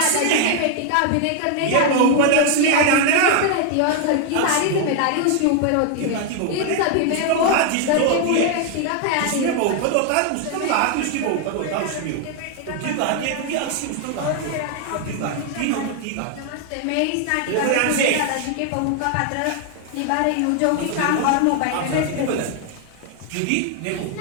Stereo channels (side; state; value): both; different; correlation 0.00